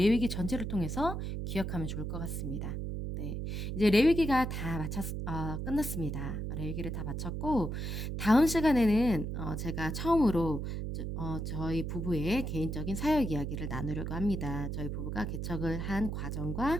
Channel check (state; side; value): noise; right; hum, 3 dB below the sound